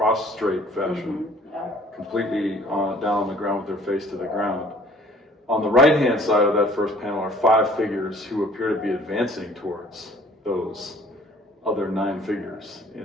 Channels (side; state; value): both; normal; correlation 0.54